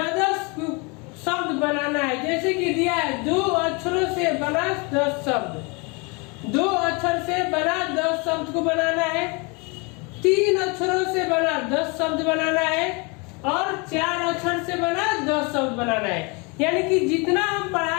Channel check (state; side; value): quieter; right; 30.1 dB